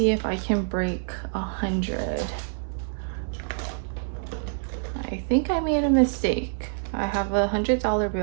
if I can break 100. I think I made a mistake. I have a $100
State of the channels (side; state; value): left; silent; 61 dB below the other